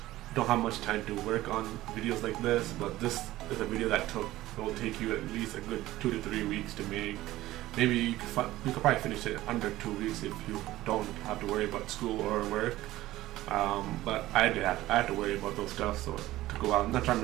don't have much time to work on videos like this. But this is a video that will take you at least a good 2 to 3 weeks to make. Maybe you could probably finish it under 2 weeks if you don't have to worry about school or work. But I had to worry about those stuff, so to go out. I'm not trying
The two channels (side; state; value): left; quieter; 16.2 dB